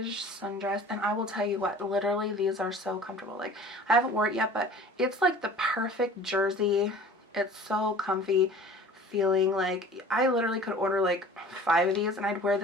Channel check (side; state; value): both; normal; correlation 0.45